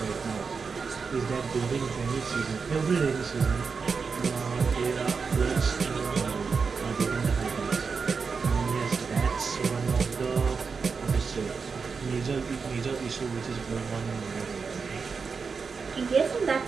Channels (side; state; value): left; quieter; 5.2 dB